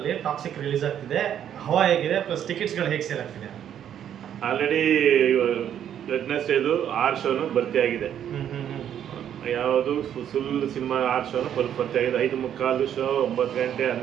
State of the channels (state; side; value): quieter; left; 9.8 dB